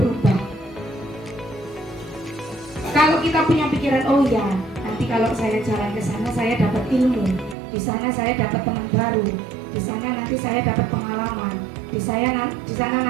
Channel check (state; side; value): drops out; left; at 7.6 s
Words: Kalau kita punya pikiran, oh ya, nanti kalau saya jalan ke sana saya dapat ilmu, di sana saya dapat teman baru, di sana nanti saya dapat pengalaman, di sana